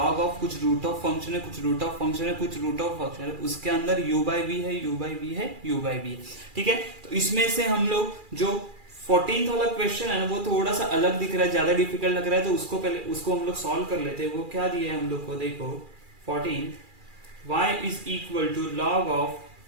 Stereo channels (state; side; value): late; left; 2.4 ms